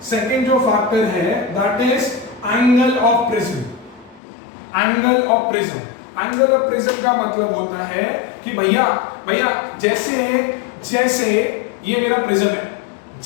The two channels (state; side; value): drops out; right; at 4.2 s